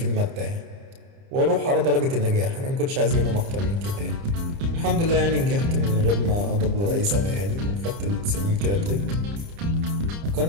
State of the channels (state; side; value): late; left; 30 ms